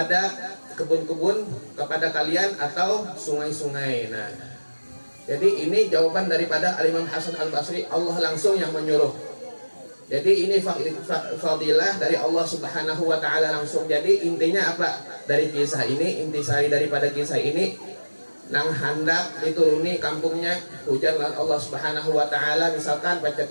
kebun-kebun kepada kalian atau sungai-sungai. Nah, jadi ini jawaban daripada Al-Imam Hasan Al-Basri, Allah langsung yang menyuruh. Jadi ini fadilah dari Allah Subhanahu wa ta'ala langsung. Jadi intinya apa dari kisah ini? Intisari daripada kisah ini, nang hendak dituruni kampungnya hujan Allah Subhanahu wa ta'ala, misalkan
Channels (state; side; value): inverted; both; correlation -1.00